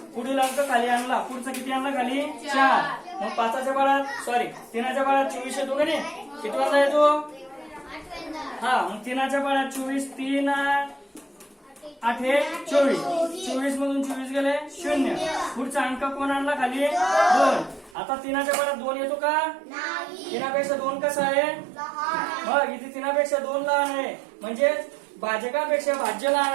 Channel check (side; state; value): left; drops out; at 17.9 s